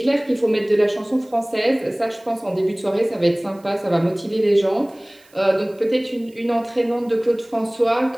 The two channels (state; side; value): noise; right; hiss, 30 dB below the sound